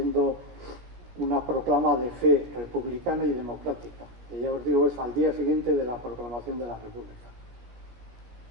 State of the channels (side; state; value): left; late; 16 ms